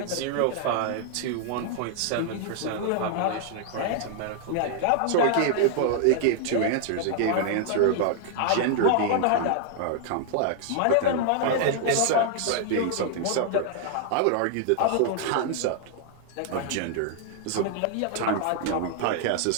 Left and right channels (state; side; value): different; both; correlation 0.00